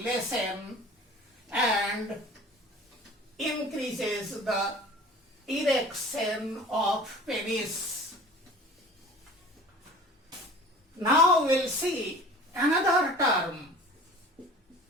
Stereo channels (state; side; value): normal; both; correlation 0.43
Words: and increases the erection of penis. Now we'll see another term,